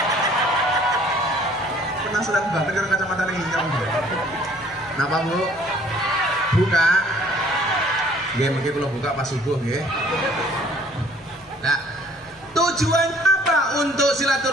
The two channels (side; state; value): both; normal; correlation 0.57